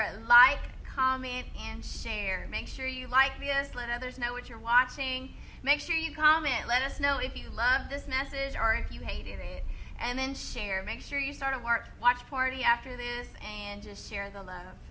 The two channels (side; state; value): both; identical; correlation 1.00